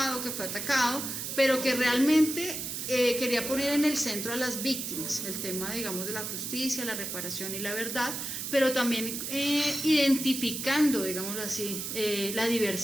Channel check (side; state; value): right; noise; hiss, 5 dB below the sound